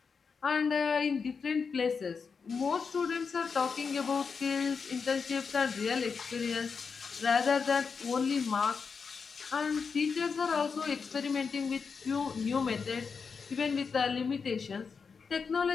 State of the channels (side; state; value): right; quieter; 5.5 dB